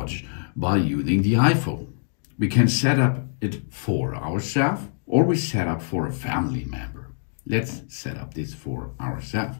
by using the iPhone. We can set up it for ourselves, or we set up for a family member. Let's set up this for ourselves.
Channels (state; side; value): silent; right; digital silence